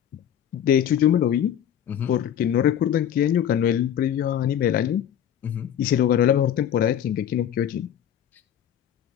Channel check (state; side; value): quieter; right; 9.9 dB